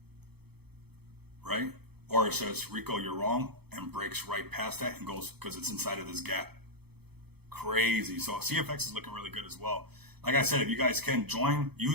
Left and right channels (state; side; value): late; left; 0.97 ms